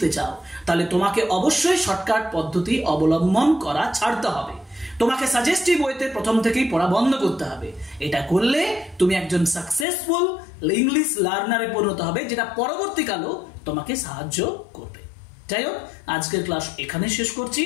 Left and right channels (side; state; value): right; drops out; at 9.9 s